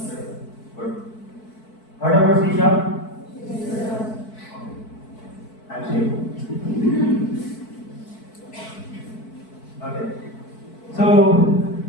Good. Heard about C#? I'm safe. Okay. So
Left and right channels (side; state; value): right; late; 4.6 ms